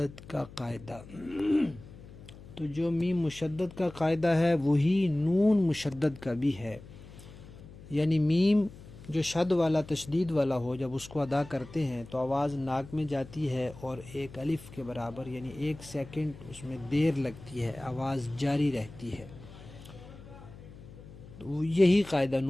کا قاعدہ۔ تو جو میم مشدد کا قاعدہ ہے وہی نون مشدد کا بھی ہے، یعنی میم جو شد والا تشدید والا ہو، جب اس کو ادا کرتے ہیں تو آواز ناک میں جاتی ہے اور ایک الف کے برابر یعنی 1 سیکنڈ اس میں دیر لگتی ہے، آواز جاری رہتی ہے۔ تو یہی قاعدہ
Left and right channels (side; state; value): left; noise; hum, 18 dB below the sound